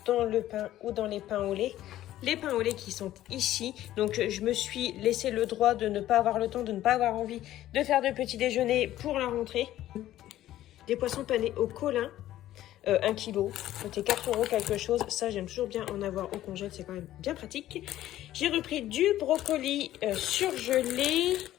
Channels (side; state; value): right; quieter; 13.7 dB